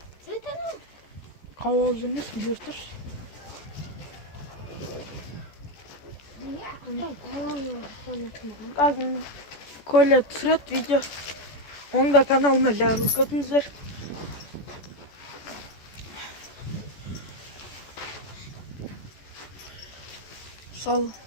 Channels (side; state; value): right; late; 14 ms